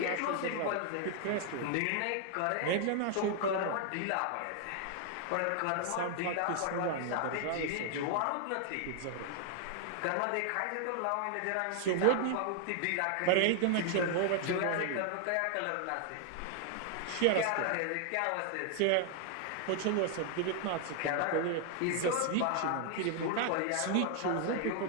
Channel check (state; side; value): different; both; correlation 0.00